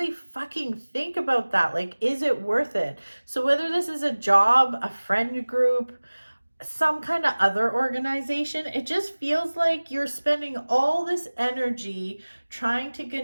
fucking think about that. Like, is it worth it? So whether this is a job, a friend group, some kind of other organization, it just feels like you're spending all this energy trying to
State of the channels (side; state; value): both; inverted; correlation -1.00